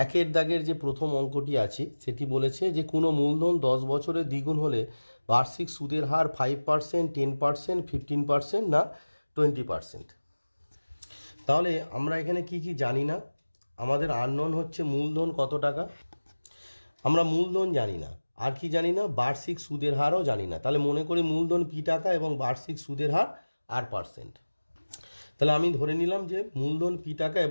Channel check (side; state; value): both; inverted; correlation -1.00